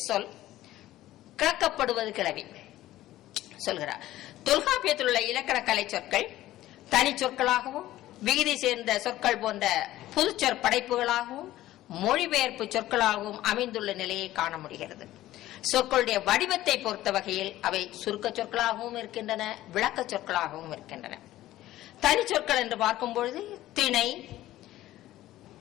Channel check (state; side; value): quieter; right; 15.0 dB